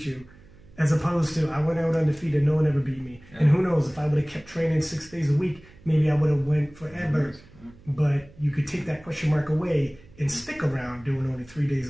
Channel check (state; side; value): noise; right; hum, 24 dB below the sound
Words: you. As opposed to, I went out undefeated, no one ever beat me. Yeah. And who knows, if I would have kept training 6 days a week, maybe I would have went forever. But you could take that question mark away and stick around doing only 3